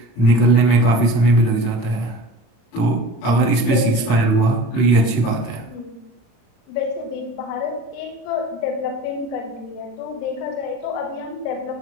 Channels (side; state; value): right; late; 34 ms